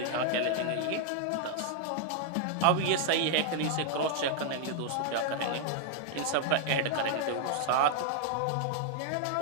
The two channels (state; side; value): different; both; correlation 0.00